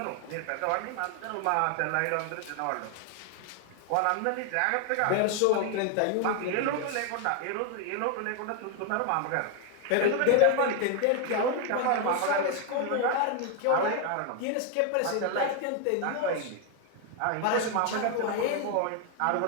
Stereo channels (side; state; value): both; different; correlation 0.01